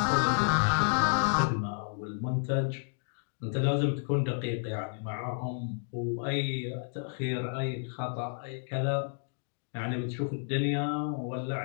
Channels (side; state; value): right; silent; digital silence